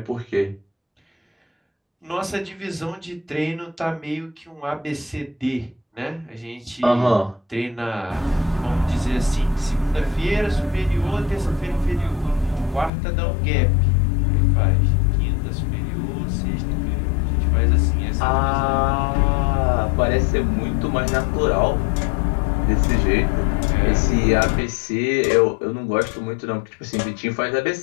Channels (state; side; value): drops out; right; at 12.9 s